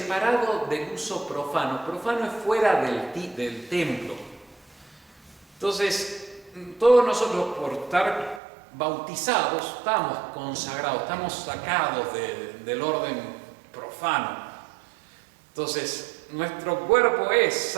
del uso profano. Profano es fuera del templo. Entonces, todos nosotros por estar bautizados estamos consagrados, estamos sacados del orden profano. Entonces, nuestro cuerpo es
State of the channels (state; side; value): drops out; left; at 8.4 s